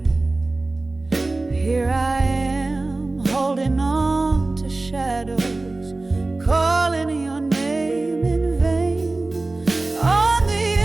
Here I am, holding on to shadows, calling your name in vain. On the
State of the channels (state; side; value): quieter; left; 3.1 dB